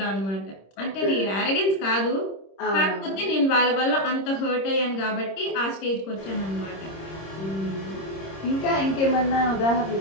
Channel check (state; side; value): late; right; 26 ms